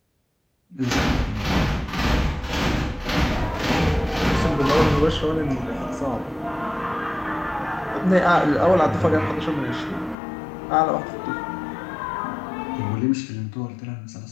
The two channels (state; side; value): drops out; right; at 10.2 s